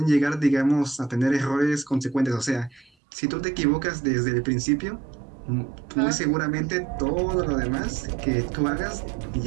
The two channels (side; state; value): left; drops out; at 2.9 s